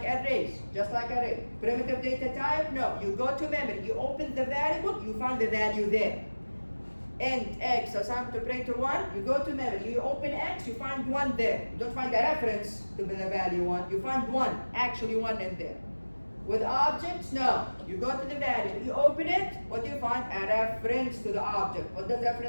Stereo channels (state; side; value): inverted; both; correlation -1.00